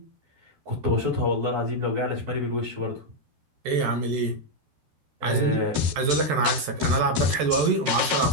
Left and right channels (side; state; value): left; late; 12 ms